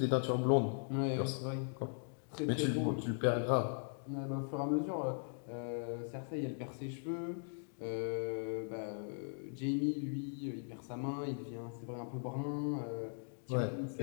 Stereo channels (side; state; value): right; silent; digital silence